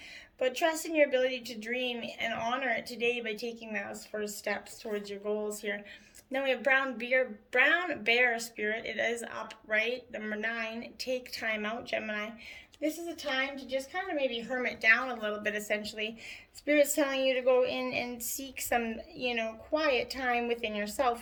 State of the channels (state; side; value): identical; both; correlation 1.00